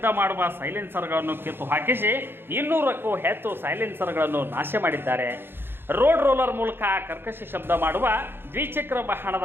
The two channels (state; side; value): late; left; 0.10 ms